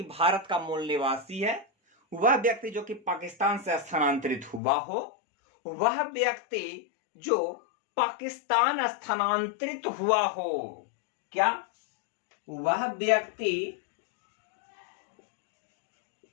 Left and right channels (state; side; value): drops out; right; at 4.6 s